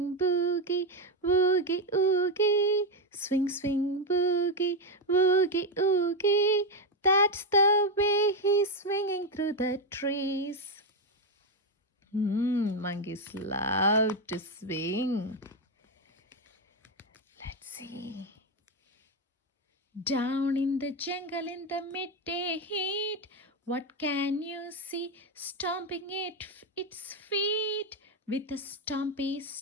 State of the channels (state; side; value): normal; both; correlation 0.07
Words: boogie, boogie, oogie. Swing, swing, boogie, boogie, oogie. That's the way he's swinging through the trees. Monkeys love to swing. Let's see. Down in the jungle in the midday heat, what can you see stomping its feet? With a stompy